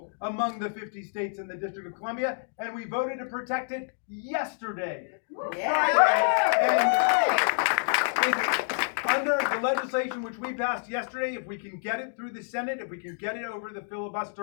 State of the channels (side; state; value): right; silent; digital silence